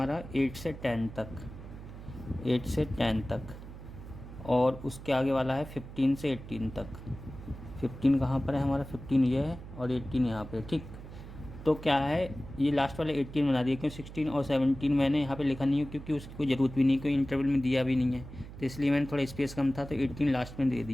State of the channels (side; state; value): right; noise; hum, 13 dB below the sound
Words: 8 से 10 तक, 8 से 10 तक। और उसके आगे वाला है 15 से 18 तक। 15 कहाँ पर है हमारा? 15 ये है और 18 यहाँ पे। ठीक, तो क्या है, ये लास्ट वाले 18 बना दिए। क्यों 16 और 17 मैंने यहाँ पे लिखा नहीं है क्योंकि उसकी कोई ज़रूरत भी नहीं, कोई इंटरवल में दिया भी नहीं है, तो इसलिए मैंने थोड़ा स्पेस कम था तो 18 लास्ट में दे